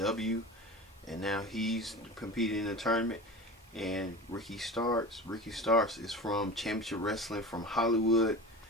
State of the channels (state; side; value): normal; both; correlation 0.33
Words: and now he's competing in the tournament. And Ricky Starks is from Championship Wrestling from Hollywood.